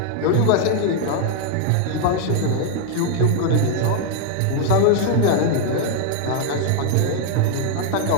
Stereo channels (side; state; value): both; different; correlation 0.00